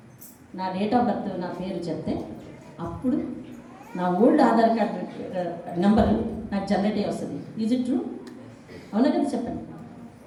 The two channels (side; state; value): both; identical; correlation 1.00